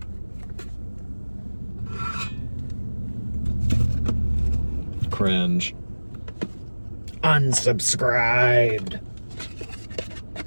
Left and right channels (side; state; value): both; inverted; correlation -1.00